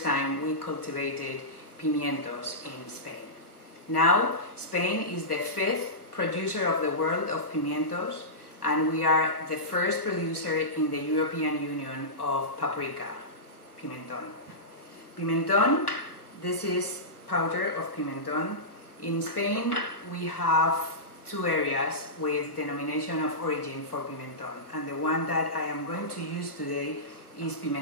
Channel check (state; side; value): late; right; 1.2 ms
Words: time we cultivated pimientos in Spain. Now, Spain is the 5th producer of the world of pimientos, and we are the first producer in the European Union of paprika, pimentón. Pimentón, this is powder of pimentón. In Spain, we have two areas with denomination of origin for pimentón, and the one that I am going to use today is